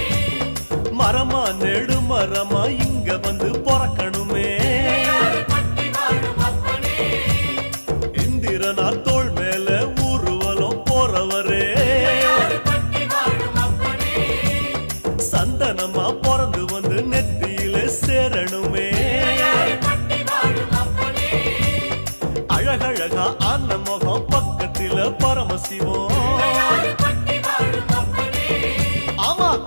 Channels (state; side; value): inverted; both; correlation -1.00